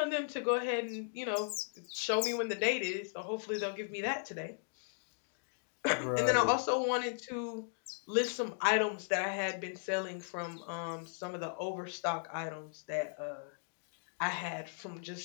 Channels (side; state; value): right; silent; digital silence